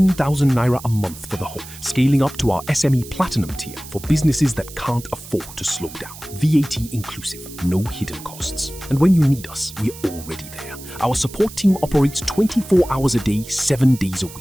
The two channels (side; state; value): right; noise; hiss, 16 dB below the sound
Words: naira a month for the home, scaling up to our SME Platinum tier for businesses that can't afford to slow down. VAT inclusive, no hidden costs. And when you need us, we're already there. Our support team operates 24 hours a day, 7 days a